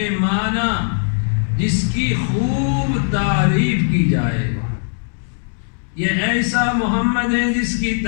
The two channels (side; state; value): right; silent; 67 dB below the other